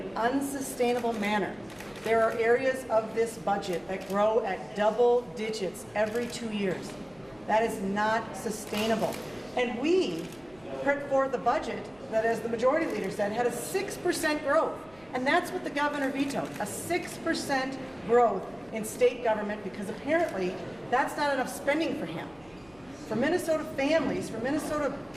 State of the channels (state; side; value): noise; right; hum, 29 dB below the sound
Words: unsustainable manner. There are areas of this budget that grow at double digits every 2 years. That is not sustainable. And we put forth a budget that, as the majority leader said, had a 6% growth. And that's what the governor vetoed, a 6% growth in state government, because apparently that's not enough spending for him. For Minnesota families, for Minnesota